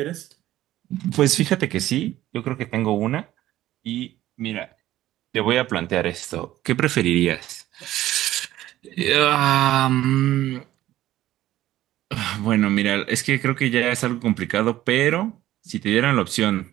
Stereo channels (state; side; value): quieter; left; 14.4 dB